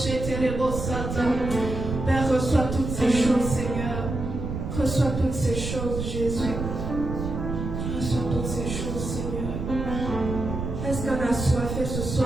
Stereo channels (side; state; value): right; noise; rumble, 5 dB below the sound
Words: Père, reçois toutes ces choses, Seigneur. Reçois toutes ces choses, Jésus. Reçois toutes ces choses, Seigneur. Est-ce qu'un assoiffé ce